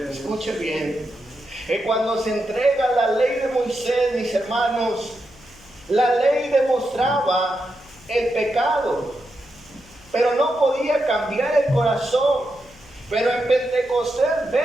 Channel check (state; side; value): noise; left; hum, 25 dB below the sound